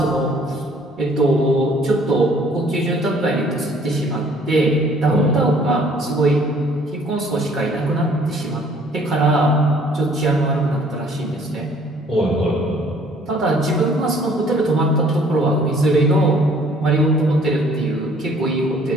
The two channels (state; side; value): normal; both; correlation 0.58